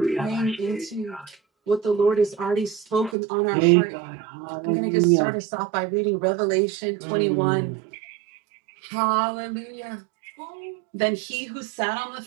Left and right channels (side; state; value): left; drops out; at 3.2 s